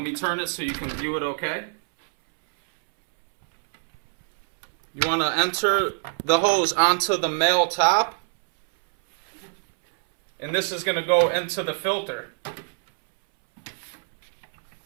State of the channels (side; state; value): left; silent; 62 dB below the other